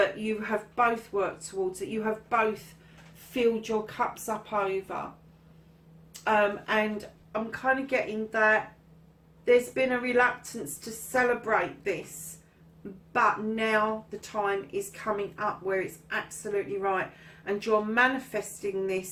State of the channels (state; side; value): identical; both; correlation 1.00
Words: you have both worked towards, that you have both filled your cups up over. And I'm kind of getting that there's been a reluctance to celebrate this, but now the time is coming up where it's absolutely right, and you're manifesting